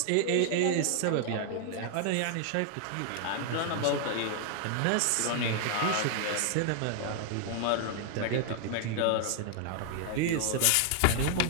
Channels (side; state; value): both; different; correlation 0.00